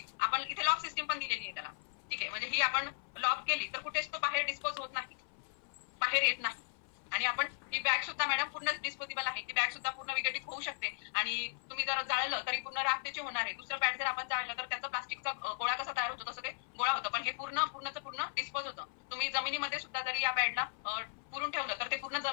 आपण इथे लॉक सिस्टीम पण दिलेली आहे त्याला, ठीक आहे? म्हणजे ही आपण लॉक केली तर कुठेच तो बाहेर डिस्पोज होत नाही, बाहेर येत नाही. आणि आपण ही बॅग सुद्धा मॅडम पूर्ण डिस्पोजेबल आहे. ती बॅग सुद्धा पूर्ण विघटित होऊ शकते. आणि तुम्ही जर जाळलं तरी पूर्ण राख त्याची होणार आहे. दुसरं पॅड जर आपण जाळलं तर त्याचा प्लास्टिकचा गोळा कसा तयार होतो तसं ते गोळा होतं, पण हे पूर्ण डिस्पोज होतं. तुम्ही जमिनीमध्ये सुद्धा जरी या पॅडला पुरून ठेवलं तर ते पूर्ण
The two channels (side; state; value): right; silent; 53 dB below the other